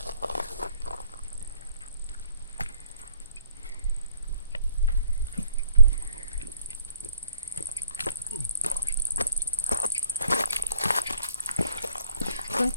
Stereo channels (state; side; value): inverted; both; correlation -0.62